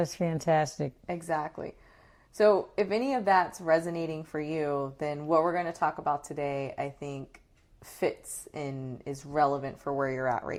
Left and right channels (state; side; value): identical; both; correlation 1.00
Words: fantastic. Exactly. So if any of that's resonating for you, then what we're going to talk about today, I think, fits and is relevant for where you're at